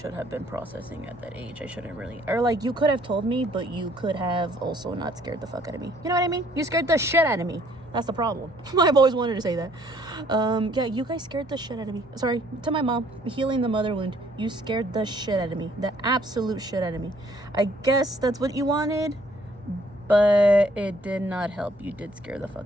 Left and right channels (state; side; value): normal; both; correlation 0.62